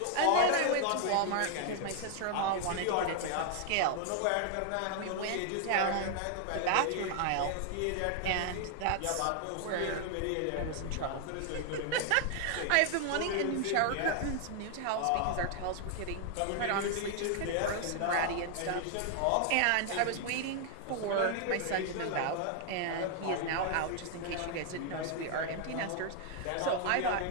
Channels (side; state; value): both; different; correlation 0.00